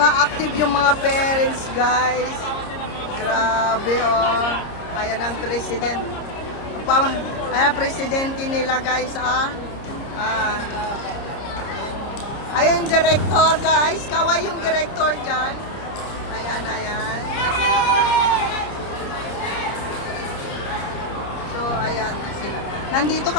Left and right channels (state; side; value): late; right; 30 ms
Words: active yung mga parents, guys. Grabe, oh. Ayan ang president. Ayan, presidente nila, guys, ah. Ayun, director, guys. Kaway yung director dyan. Ayan. So, ayan sila. Nandito